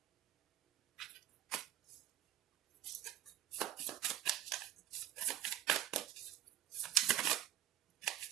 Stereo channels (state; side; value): quieter; left; 12.5 dB